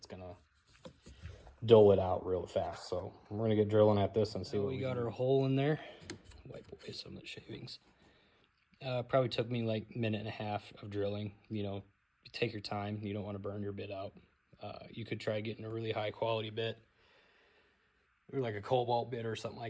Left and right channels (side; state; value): both; identical; correlation 1.00